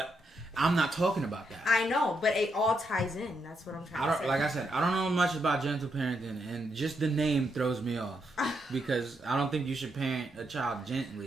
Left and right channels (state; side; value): normal; both; correlation 0.80